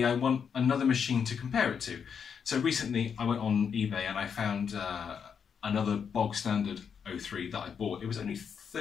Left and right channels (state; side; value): quieter; right; 6.9 dB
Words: I want another machine to compare it to. So recently I went on eBay and I found another bog standard 03 that I bought. It was only